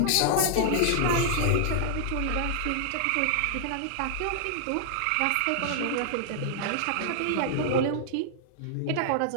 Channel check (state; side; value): different; both; correlation -0.01